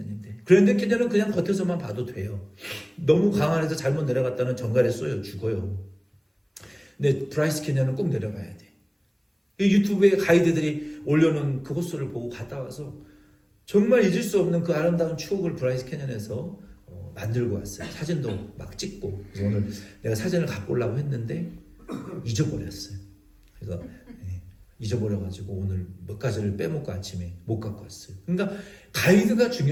그랜드 캐년은 그냥 겉에서만 봐도 돼요. 너무 강한에서 잘못 내려갔다는 정갈에 쏘여 죽어요. 근데 브라이스 캐년은 꼭 내려가야 돼. 유튜브에 가이드들이 올려놓은 그 호수를 보고 갔다 와서 정말 잊을 수 없는 그 아름다운 추억을 브라이스 캐년에서 만들고 왔어요. 사진도 막 찍고. 그래서 오늘 내가 사진을 갖고 오려고 했는데 잊어버렸어요. 그래서 잊어버려가지고 오늘 몇 가지를 빼먹고 아침에 못 갖고 왔어요. 그러니까 가이드가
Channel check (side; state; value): both; identical; correlation 1.00